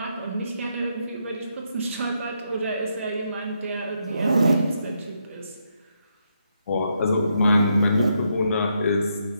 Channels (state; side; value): inverted; both; correlation -0.79